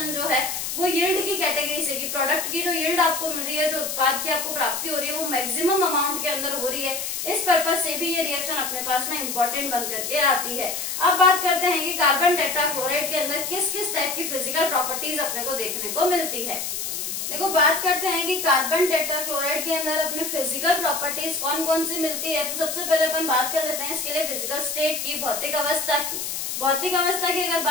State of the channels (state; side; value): noise; left; hiss, 4 dB below the sound